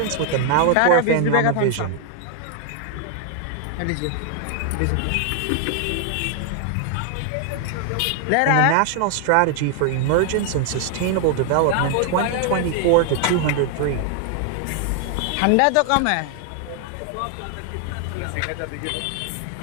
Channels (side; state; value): both; different; correlation 0.00